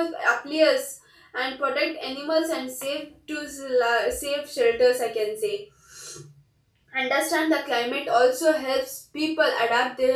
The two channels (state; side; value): identical; both; correlation 1.00